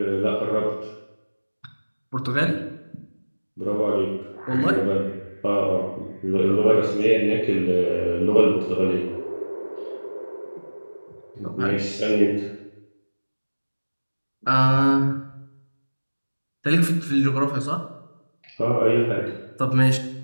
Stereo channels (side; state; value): both; inverted; correlation -1.00